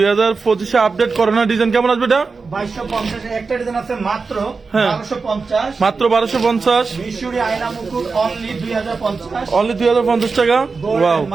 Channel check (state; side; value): quieter; left; 4.5 dB